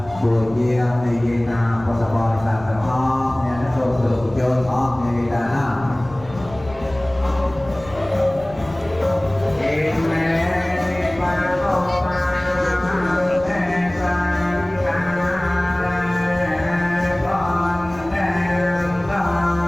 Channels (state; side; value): noise; left; rumble, 19 dB below the sound